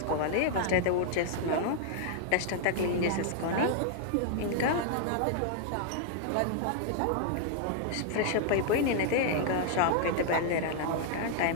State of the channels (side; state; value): both; different; correlation 0.00